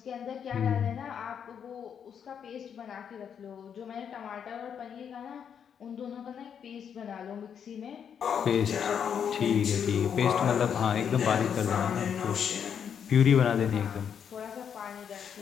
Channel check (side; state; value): right; quieter; 7.8 dB